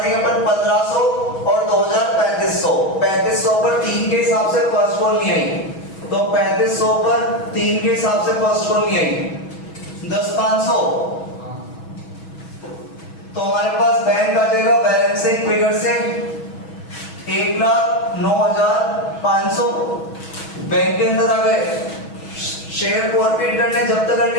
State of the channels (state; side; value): late; right; 6.2 ms